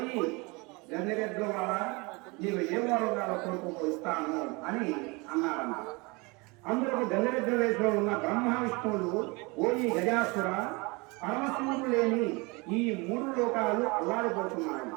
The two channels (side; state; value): left; quieter; 27.1 dB